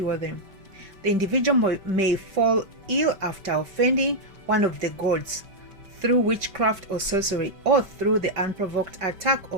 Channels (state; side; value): late; left; 5.2 ms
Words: them. The individual may fall ill after offending one of the gods through witchcraft or sorcery, or through the unprovoked attack